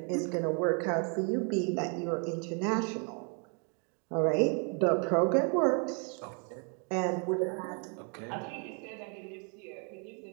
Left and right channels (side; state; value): left; quieter; 38.4 dB